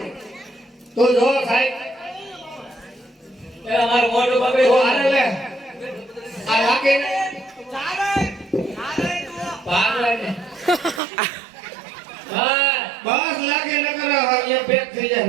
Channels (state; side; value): drops out; left; at 11.0 s